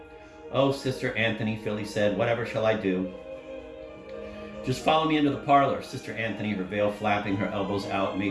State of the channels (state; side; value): identical; both; correlation 1.00